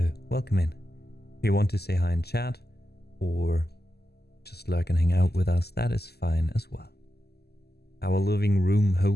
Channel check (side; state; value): right; late; 0.47 ms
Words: Welcome in. If you want to say hi in chat or just lurk and hang out with us, that is fine as well. Our living room